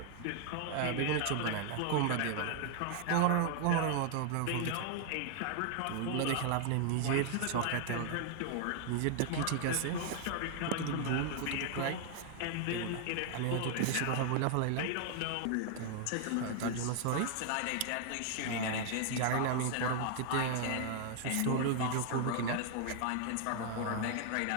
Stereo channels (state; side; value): different; both; correlation 0.00